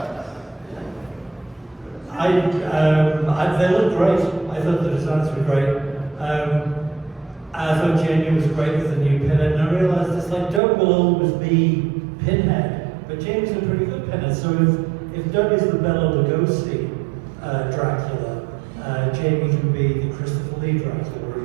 They look great. I thought the designs were great. I thought Jenny was great with the new Pinhead, and I realized it's like Doug will always be Pinhead, but But Jamie's a pretty good pinhead. So if Doug is the Bela Lugosi Dracula, Jamie can be the Christopher Lee Dracula, or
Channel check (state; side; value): drops out; left; at 10.6 s